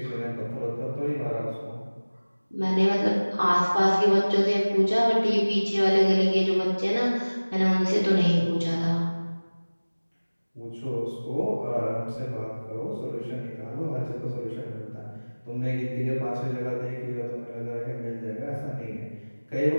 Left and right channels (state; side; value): inverted; both; correlation -1.00